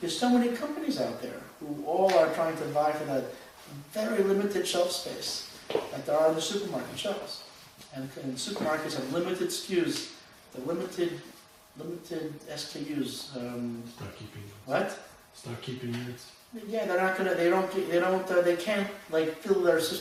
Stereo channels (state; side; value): identical; both; correlation 1.00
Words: so many companies out there who all are trying to vie for that very limited shelf space, like there are on the supermarket shelves. And supermarkets have limited SKUs, the limited SKUs. Stock keeping. What? Stock keeping units. Yeah, they're not gonna. They can't fill their